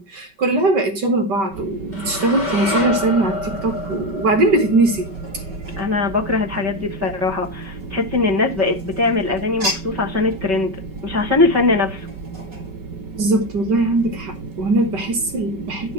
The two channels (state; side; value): late; left; 5.2 ms